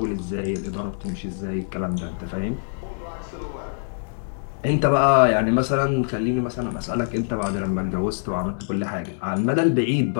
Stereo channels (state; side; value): silent; right; digital silence